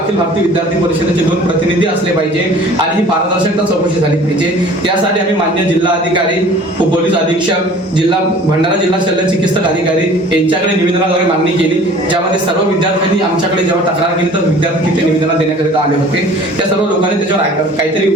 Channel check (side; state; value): both; normal; correlation 0.48